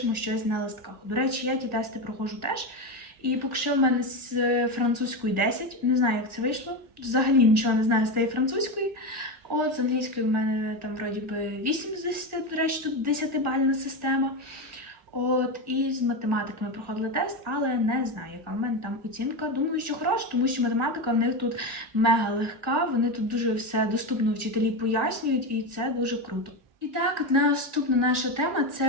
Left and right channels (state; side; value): late; left; 1.8 ms